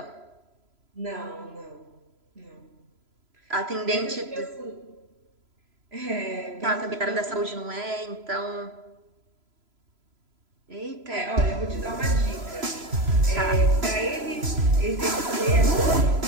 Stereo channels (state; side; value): late; left; 3.0 ms